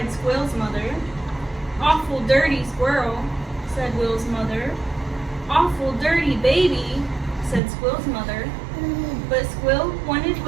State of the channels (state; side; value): drops out; left; at 7.6 s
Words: Squill's mother. "Awful dirty squirrel," said Will's mother. "Awful dirty baby," said Squill's mother. But Squill wanted